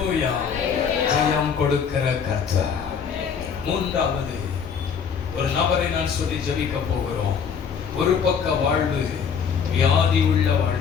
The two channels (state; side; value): quieter; right; 6.8 dB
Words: ஜெயம் கொடுக்கிற கர்த்தர். மூன்றாவது ஒரு நபரை நான் சொல்லி ஜெபிக்க போகிறோம். ஒரு பக்க வாழ்வு வியாதி உள்ள